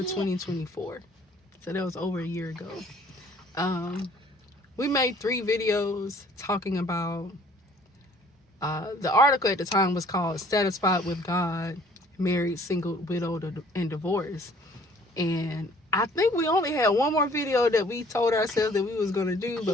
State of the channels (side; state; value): both; normal; correlation 0.56